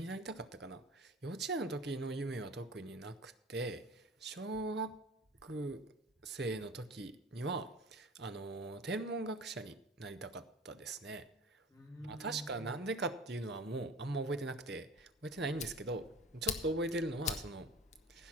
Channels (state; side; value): normal; both; correlation 0.40